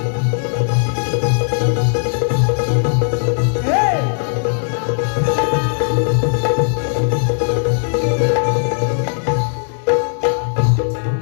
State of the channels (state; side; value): silent; right; 65 dB below the other